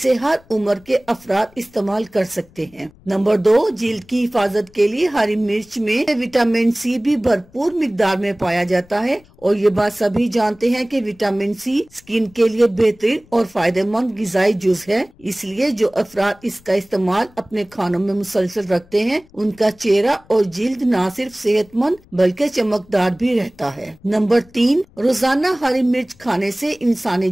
हर उम्र के अफराद इस्तेमाल कर सकते हैं। नंबर 2, जिल्द की हिफाजत के लिए हरी मिर्च में विटामिन सी भी भरपूर मिकदार में पाया जाता है और ये बात सभी जानते हैं कि विटामिन सी स्किन के लिए बेहतरीन और फायदेमंद गिजाई जुज है। इसलिए जो अफराद इसका इस्तेमाल अपने खानों में मुसलसल रखते हैं उनका चेहरा और जिल्द न सिर्फ सेहतमंद बल्कि चमकदार भी रहता है। नंबर 3, रोजाना हरी मिर्च खाने से इंसानी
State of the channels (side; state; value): left; noise; rumble, 27 dB below the sound